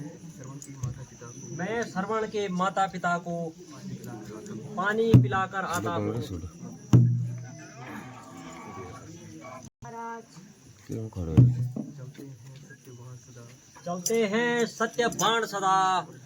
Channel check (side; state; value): both; identical; correlation 1.00